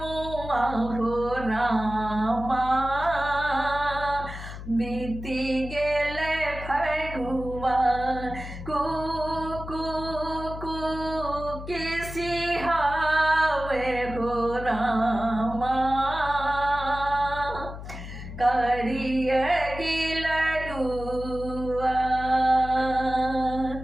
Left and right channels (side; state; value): left; noise; hum, 10 dB below the sound